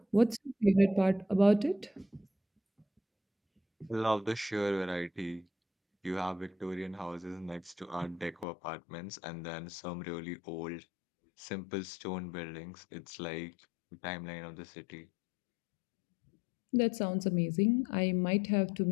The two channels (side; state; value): right; drops out; at 8.5 s